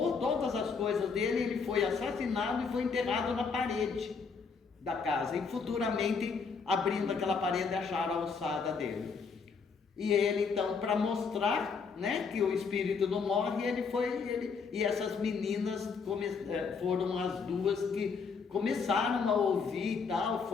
todas as coisas dele, ele foi assassinado e foi enterrado na parede da casa, e futuramente, abrindo aquela parede, acharam a alçada dele. E ele então, para mostrar, né, que o espírito não morre, e essas meninas foram as 2 que começaram a ouvir e tal,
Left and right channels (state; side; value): quieter; right; 5.3 dB